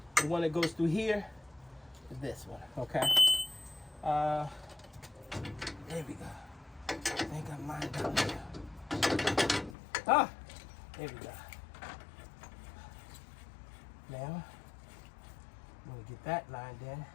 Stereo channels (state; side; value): drops out; right; at 9.8 s